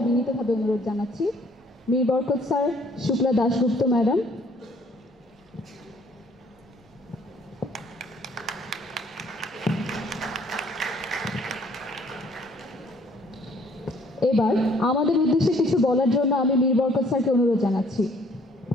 বিনীতভাবে অনুরোধ জানাচ্ছি। মীর বরকত স্যার, শুক্লা দাশগুপ্ত ম্যাডাম, এবার আমাদের উদ্দেশ্যে কিছু বলার জন্য আমি মীর বরকত স্যারকে অনুরোধ জানাচ্ছি।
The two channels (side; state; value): both; normal; correlation 0.61